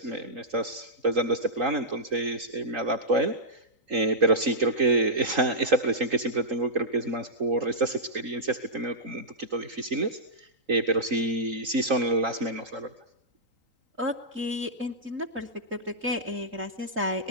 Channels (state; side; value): late; left; 3.8 ms